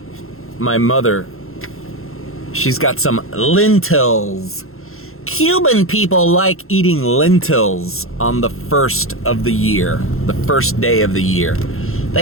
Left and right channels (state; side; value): late; right; 0.62 ms